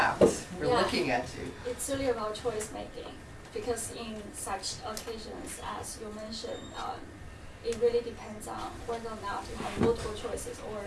We're Yeah. looking at you. It's really about choice making, because in such occasions, as you mentioned, it really depends on whether or not you have multiple choices or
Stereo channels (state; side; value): identical; both; correlation 1.00